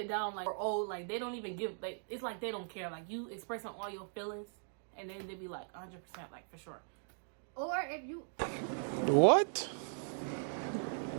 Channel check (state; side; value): silent; left; digital silence